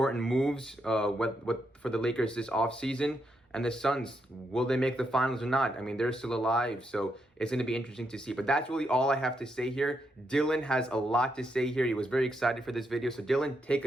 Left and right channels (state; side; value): normal; both; correlation 0.80